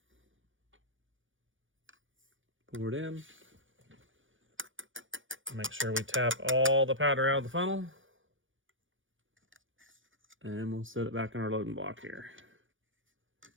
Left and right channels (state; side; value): late; left; 0.57 ms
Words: pour it in. Make sure we tap all the powder out of the funnel. And we'll set it back in our loading block here.